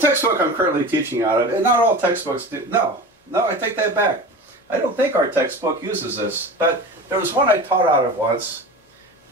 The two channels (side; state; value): both; normal; correlation 0.32